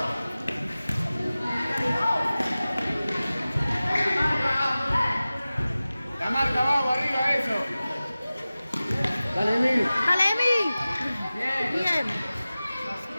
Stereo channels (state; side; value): inverted; both; correlation -0.97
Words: La marca abajo, arriba, eso. Dale, Emil. Dale, Emi. Bien.